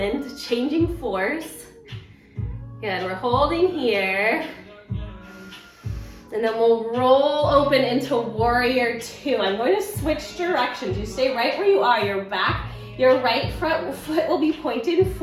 changing force. Good, we're holding here. And then we'll roll open into warrior two. I'm going to switch directions. You stay right where you are. Your right front foot will be pointed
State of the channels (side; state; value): both; identical; correlation 1.00